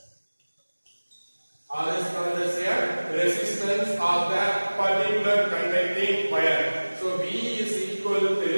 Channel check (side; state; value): both; inverted; correlation -1.00